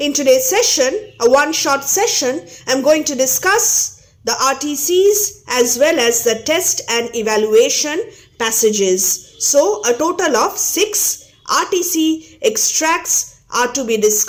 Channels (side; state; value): both; identical; correlation 1.00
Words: today's session, a one-shot session, I'm going to discuss the RTCs as well as the test and evaluation passages. So a total of 6 RTC extracts are to be